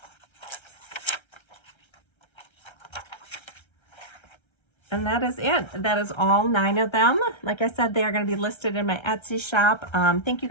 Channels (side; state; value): right; late; 1.3 ms